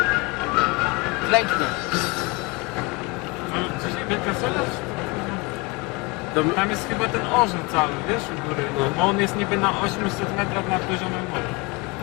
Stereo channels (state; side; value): quieter; right; 26.8 dB